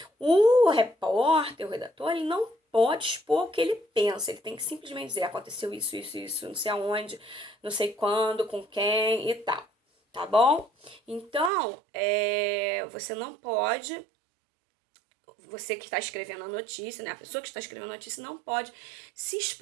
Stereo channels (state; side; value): drops out; left; at 11.5 s